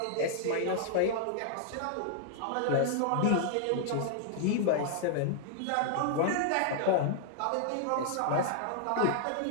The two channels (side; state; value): both; different; correlation -0.01